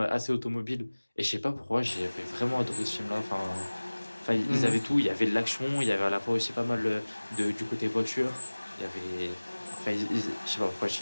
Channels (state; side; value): inverted; both; correlation -1.00